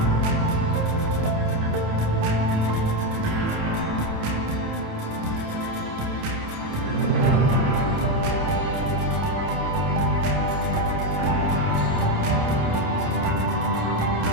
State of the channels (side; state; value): left; late; 28 ms